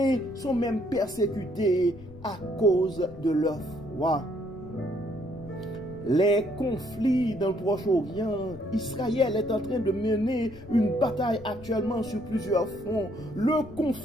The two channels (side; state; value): left; noise; rumble, 18 dB below the sound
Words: sont même persécutés à cause de leur foi. Les conflits dans le Proche-Orient, Israël est en train de mener une bataille actuellement sur plusieurs fronts. Le